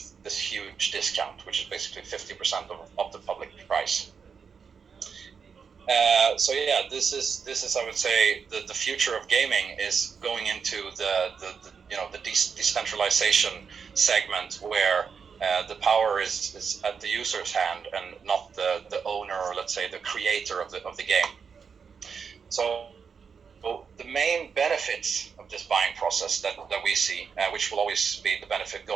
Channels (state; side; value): quieter; left; 6.1 dB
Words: this huge discount, which is basically 50% of the public price. So yeah, this is I would say the future of gaming is going into the decentralization segment, where the power is at the user's hand and not the owner, or let's say the creator of the game. So the main benefits of this buying process that we see, which will always be the benefit